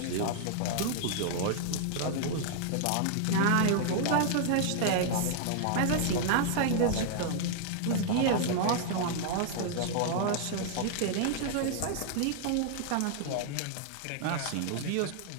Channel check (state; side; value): different; both; correlation -0.01